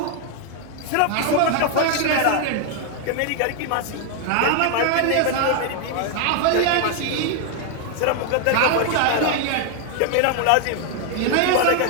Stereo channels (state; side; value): different; both; correlation 0.00